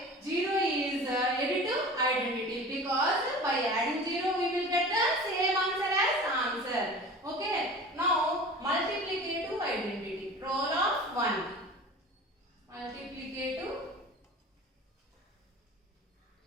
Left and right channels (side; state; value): both; normal; correlation 0.38